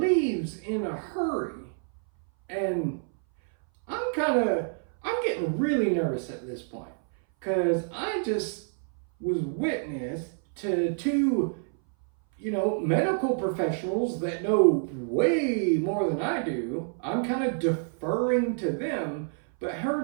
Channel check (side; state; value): left; silent; 58 dB below the other